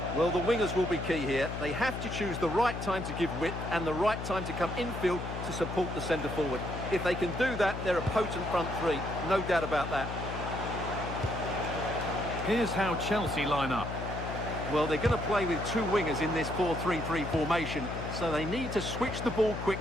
Well, the wingers will be key here. They have to choose the right time to give width and the right time to come infield to support the centre-forward. If they can do that, they're a potent front three. No doubt about that. Here's how Chelsea line up. Well, they're going to play with two wingers in this 4-3-3 formation, so they need to switch the ball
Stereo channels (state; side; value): noise; left; hum, 6 dB below the sound